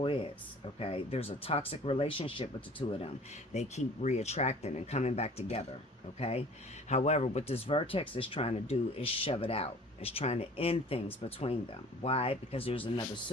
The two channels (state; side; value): normal; both; correlation 0.48